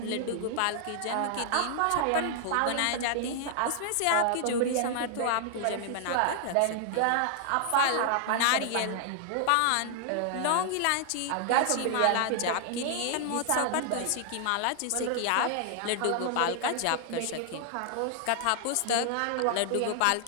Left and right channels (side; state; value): both; different; correlation 0.00